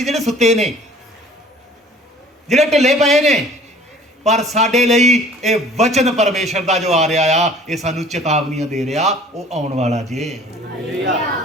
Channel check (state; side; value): normal; both; correlation 0.50